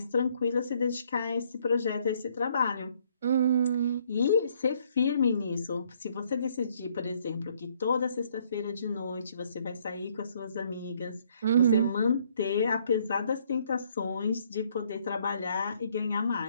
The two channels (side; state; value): both; inverted; correlation -0.66